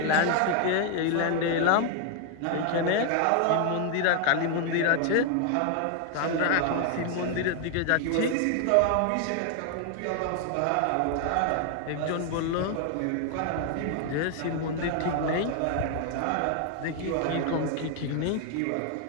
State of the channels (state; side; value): different; both; correlation 0.01